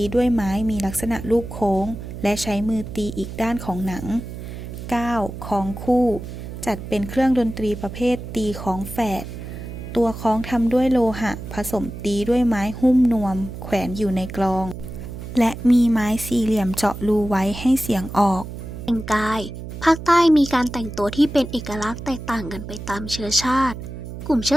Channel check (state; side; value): noise; right; hum, 10 dB below the sound